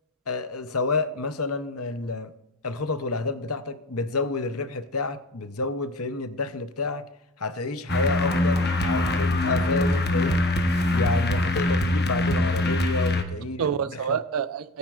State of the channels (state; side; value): normal; both; correlation 0.37